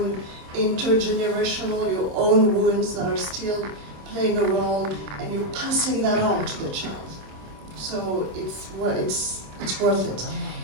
intergenerational, your own wounds that are still playing a role, and you're passing that on to the child. So it's worth it.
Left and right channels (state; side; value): late; left; 26 ms